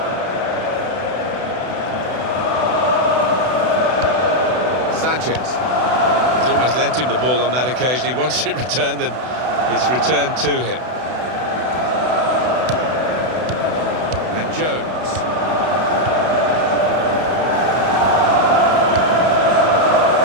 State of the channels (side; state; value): left; late; 32 ms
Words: Sanchez. He's almost lent him the ball on that occasion. He wants it returned, and it's returned to him. And Jones.